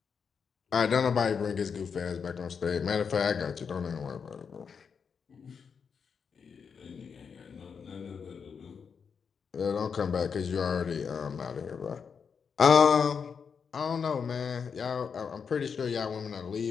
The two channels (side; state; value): right; quieter; 6.3 dB